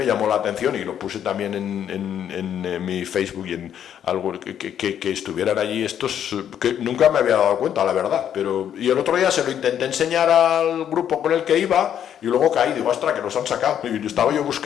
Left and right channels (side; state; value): right; quieter; 9.5 dB